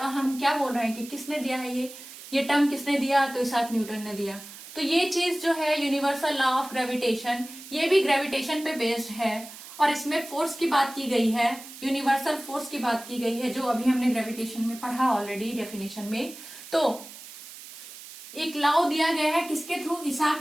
हम क्या बोल रहे हैं कि किसने दिया है ये टर्म किसने दिया, तो इसाक न्यूटन ने दिया। तो ये चीज जो है यूनिवर्सल लॉ ऑफ ग्रेविटेशन, ये भी ग्रेविटेशन पे बेस्ड है और इसमें फोर्स की बात की गई है, यूनिवर्सल फोर्स की बात की गई है, जो अभी हमने ग्रेविटेशन में पढ़ा ऑलरेडी डेफिनेशन में। तो एक लॉ दिया गया है किसके थ्रू,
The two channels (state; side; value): noise; right; hiss, 15 dB below the sound